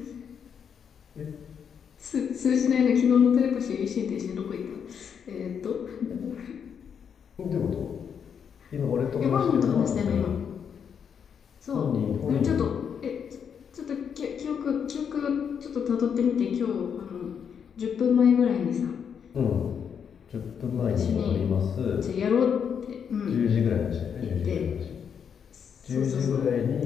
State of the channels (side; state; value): right; quieter; 7.4 dB